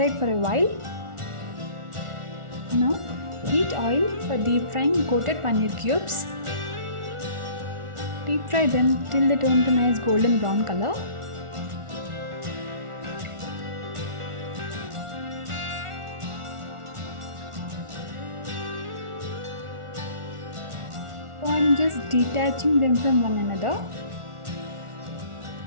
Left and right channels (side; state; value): left; late; 1.4 ms